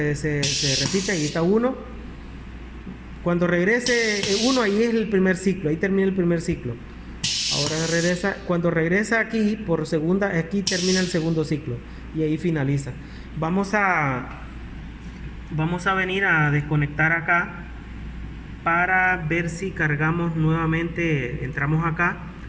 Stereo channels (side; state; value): both; identical; correlation 1.00